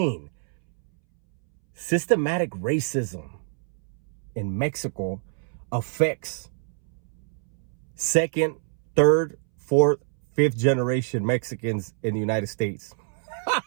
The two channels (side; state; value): left; silent; 61 dB below the other